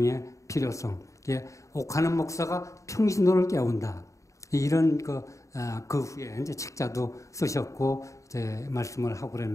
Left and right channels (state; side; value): late; right; 0.15 ms